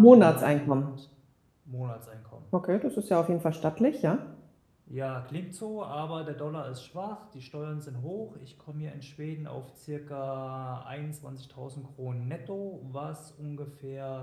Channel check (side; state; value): both; identical; correlation 1.00